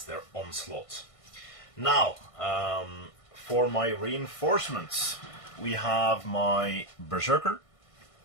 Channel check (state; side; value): late; right; 1.5 ms